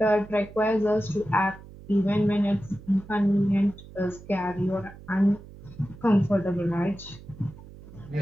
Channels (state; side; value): noise; right; hum, 18 dB below the sound